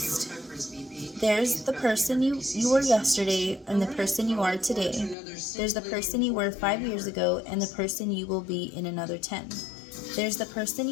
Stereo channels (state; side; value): drops out; right; at 5.2 s